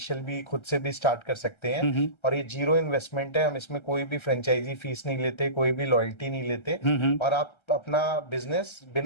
भी खुद से भी स्टार्ट कर सकते हैं। हम्म और ये जीरो इन्वेस्टमेंट है, हम इसमें कोई भी फ्रेंचाइजी फीस नहीं लेते, कोई भी लॉयल्टी नहीं लेते, हम्म और आप अपना बिजनेस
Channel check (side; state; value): right; late; 1.3 ms